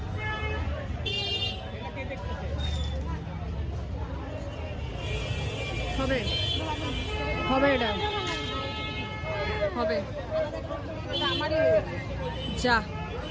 হবে, হবে, এটা হবে। আমারই যা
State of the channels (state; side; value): identical; both; correlation 1.00